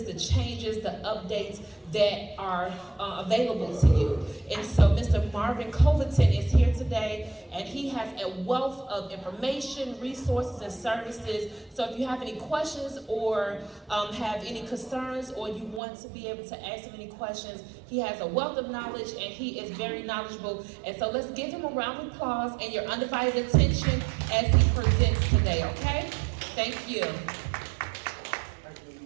the changes, the updates that are available to you. And so Mr. Marvin Colleton is here today, and he has a wealth of information, resources, and services. So if you have any questions or have any concerns, or you want to be able to ask him any questions, he has a wealth of knowledge and he is very knowledgeable. And so let's give him a round of applause and your undivided attention as he presents today, okay? Thank you.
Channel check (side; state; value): left; drops out; at 15.8 s